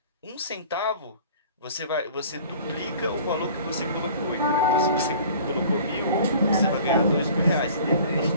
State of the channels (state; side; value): inverted; both; correlation -0.47